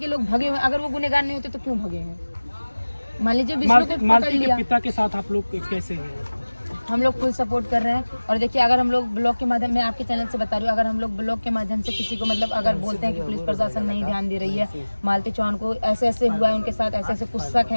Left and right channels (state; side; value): inverted; both; correlation -1.00